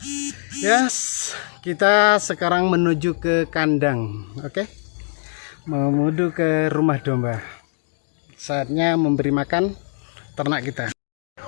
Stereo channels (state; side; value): silent; right; digital silence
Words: Yes, kita sekarang menuju ke kandang. Oke. Menuju ke rumah domba. Saatnya memberi makan ternak kita.